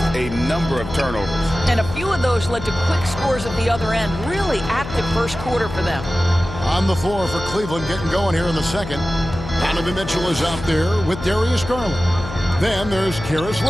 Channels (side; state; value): left; noise; hum, 10 dB below the sound